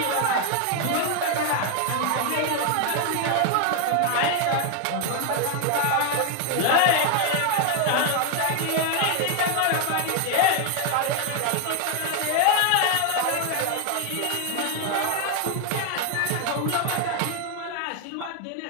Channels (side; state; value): both; different; correlation 0.01